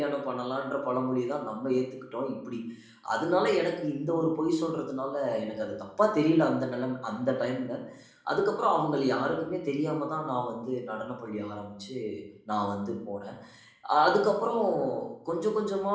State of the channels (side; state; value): both; identical; correlation 1.00